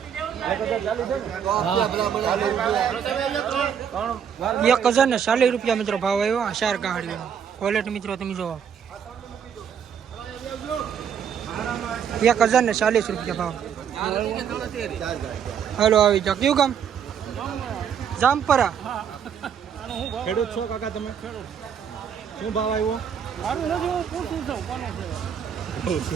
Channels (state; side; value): quieter; left; 8.0 dB